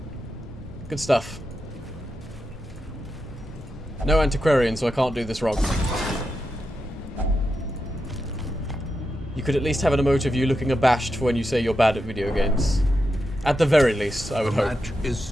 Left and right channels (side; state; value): both; normal; correlation 0.87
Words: Good stuff. No antiquarian, so I can't do this wrong. You could at least have an emote of you looking abashed for when you say you're bad at video games. At the very least, I would hope. The match is